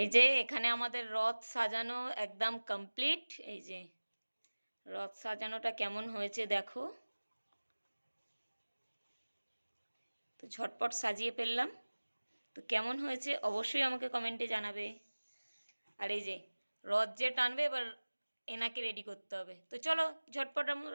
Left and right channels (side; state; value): both; inverted; correlation -1.00